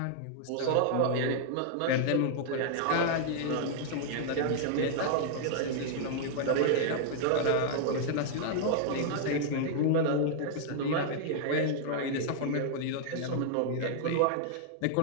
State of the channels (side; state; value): both; different; correlation -0.01